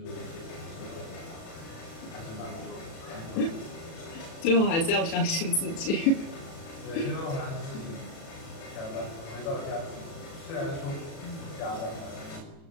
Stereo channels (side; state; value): right; late; 36 ms